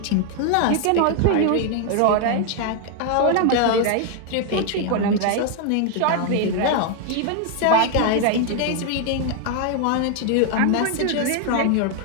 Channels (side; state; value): both; different; correlation 0.00